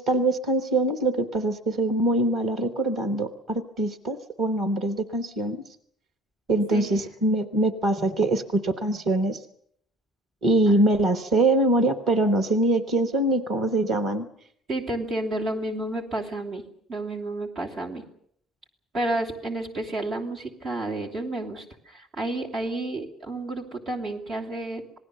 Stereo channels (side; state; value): both; normal; correlation 0.48